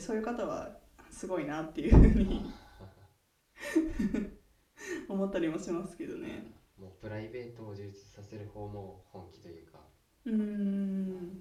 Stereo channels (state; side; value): identical; both; correlation 1.00